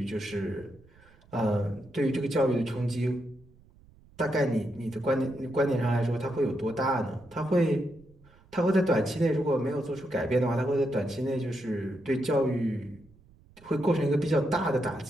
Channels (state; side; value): noise; right; rumble, 27 dB below the sound